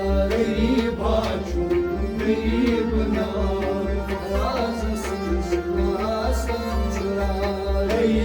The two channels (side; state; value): both; identical; correlation 1.00